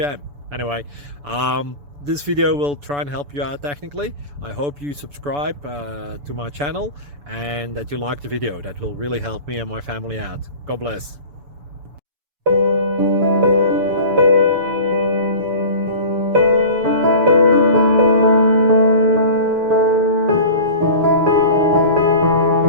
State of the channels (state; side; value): late; left; 7.0 ms